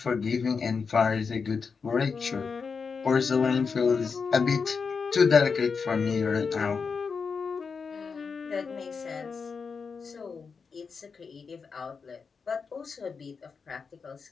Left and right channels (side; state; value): right; quieter; 5.4 dB